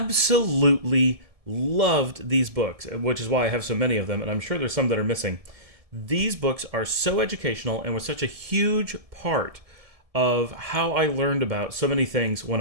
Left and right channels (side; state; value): left; late; 1.7 ms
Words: loved these books, which is why I have so many of them. And I'm sure there's some that are missing. These books are so educational and were such a huge part of how I learned about so many things when